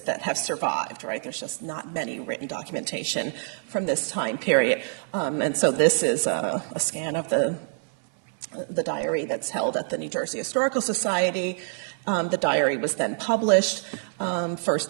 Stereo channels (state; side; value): silent; left; 61 dB below the other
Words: that have survived, right? There's just not many written documentation from this time period. And so this is a scan of the diary that's held at the New Jersey Historical Society. The diary was then published,